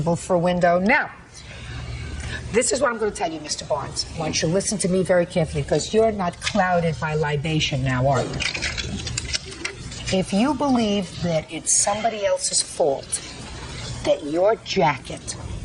for a window. Now, this is what I'm going to tell you, Mr. Barnes. I want you to listen to me very carefully, because you're not clouded by libation now, are you? If you believe that it's somebody else's fault that your jacket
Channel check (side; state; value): both; identical; correlation 1.00